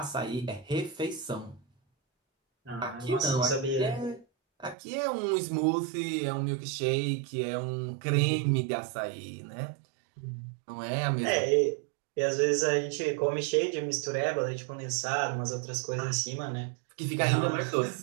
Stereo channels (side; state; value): left; drops out; at 4.8 s